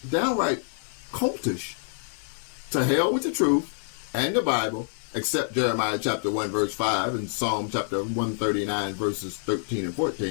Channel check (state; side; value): silent; right; digital silence